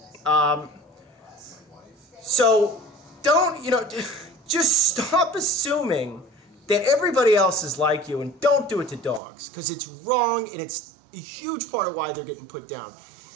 So don't, just stop assuming that everybody else is like you, and don't do it to dogs, because it's wrong, and it's a huge part of why they're getting put down.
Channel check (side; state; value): left; drops out; at 9.2 s